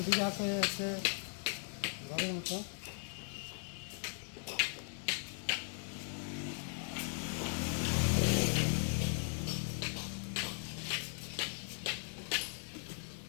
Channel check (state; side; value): silent; right; 52 dB below the other